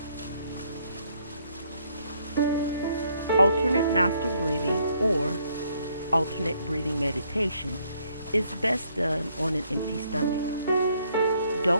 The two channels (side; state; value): both; inverted; correlation -0.69